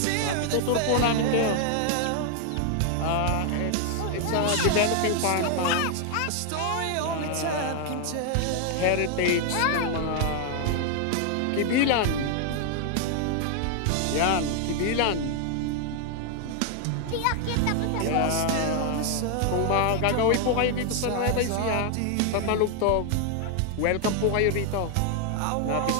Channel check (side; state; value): both; different; correlation 0.00